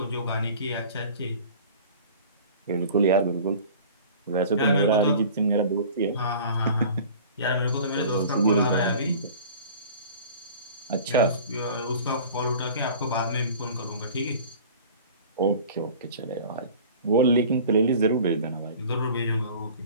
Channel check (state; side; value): inverted; both; correlation -0.43